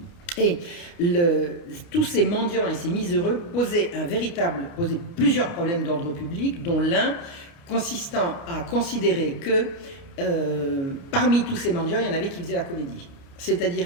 Et tous ces mendiants et ces miséreux posaient plusieurs problèmes d'ordre public, dont l'un consistant à considérer que parmi tous ces mendiants, il y en avait qui faisaient la comédie.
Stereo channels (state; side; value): late; right; 29 ms